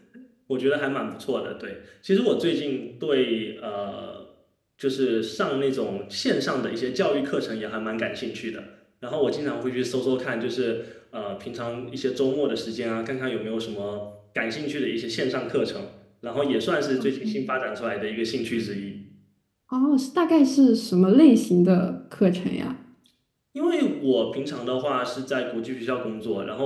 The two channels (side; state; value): both; identical; correlation 1.00